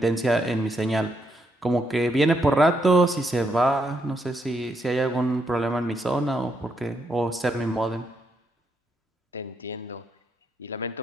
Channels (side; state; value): both; normal; correlation 0.78